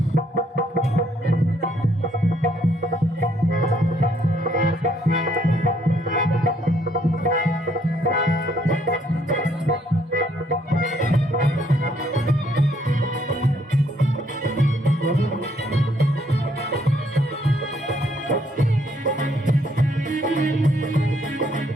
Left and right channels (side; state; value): both; normal; correlation 0.69